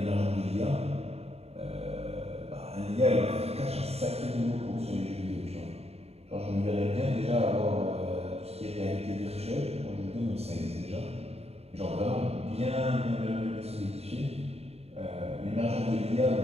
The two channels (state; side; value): late; left; 0.30 ms